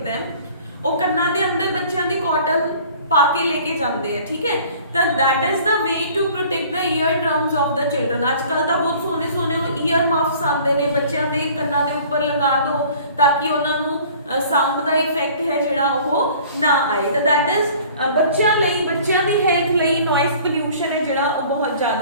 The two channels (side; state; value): both; inverted; correlation -0.50